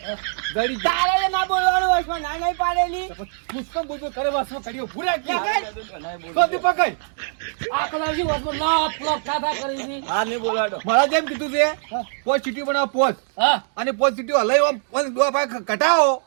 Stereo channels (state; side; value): silent; left; digital silence